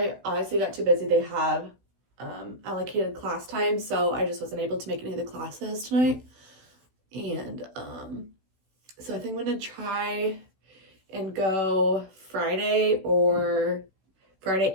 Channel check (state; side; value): late; left; 16 ms